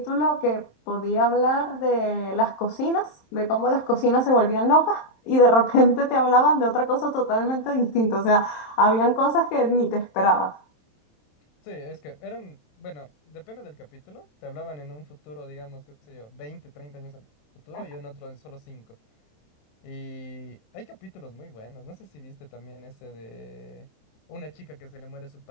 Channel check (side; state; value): right; late; 27 ms